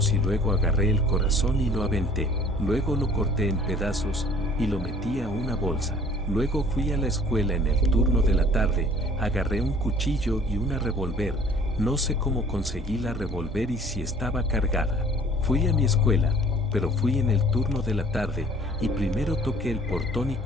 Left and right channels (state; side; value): normal; both; correlation 0.53